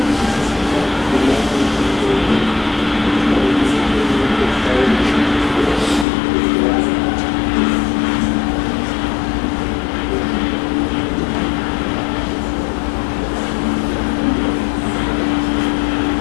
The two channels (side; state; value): right; drops out; at 6.1 s